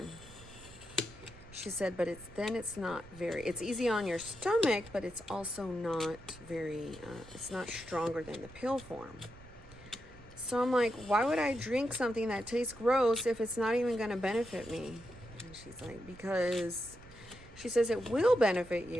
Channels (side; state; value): right; noise; rumble, 20 dB below the sound